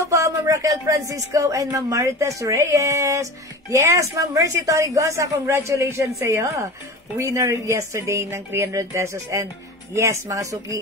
po, Ma'am Raquel Francisco and Ma'am Marites Reyes. Yes, Ma'am Mercy Torigosa, congratulations sa iyo. Winner yesterday ng 300 pesos. And yes, mga suki,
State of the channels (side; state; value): both; normal; correlation 0.33